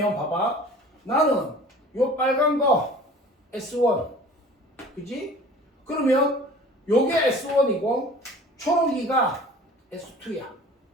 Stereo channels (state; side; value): normal; both; correlation 0.45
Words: 봐봐. 나는 요 빨간 거 S1, 그치? 그러면 요게 S1이고 초록이가 S2야.